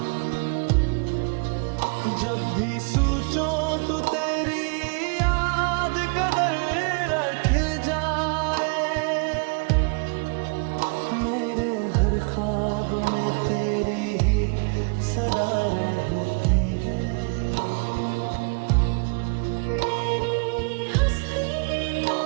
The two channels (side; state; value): left; quieter; 36.1 dB